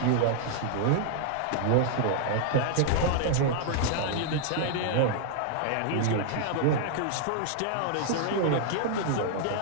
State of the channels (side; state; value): both; different; correlation -0.01